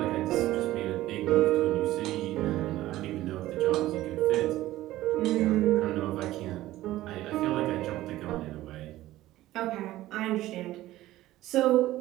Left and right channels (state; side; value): quieter; left; 15.7 dB